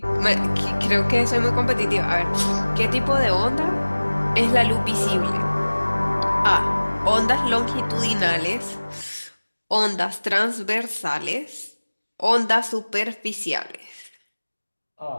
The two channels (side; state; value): both; inverted; correlation -1.00